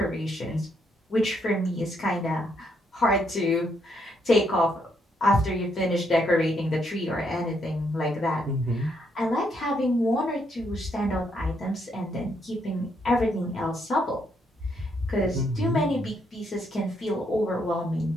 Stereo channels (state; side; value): normal; both; correlation 0.75